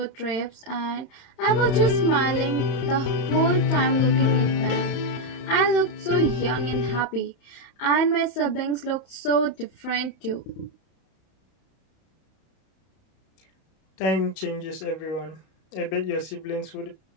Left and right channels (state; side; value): late; right; 31 ms